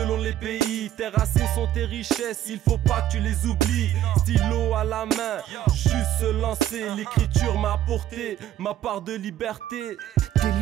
les pays. Tes racines sont tes richesses, il faut pas que tu les oublies. Stylo à la main, juste se lancer. L'écriture m'a apporté ma part de liberté. T'es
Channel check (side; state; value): left; quieter; 12.3 dB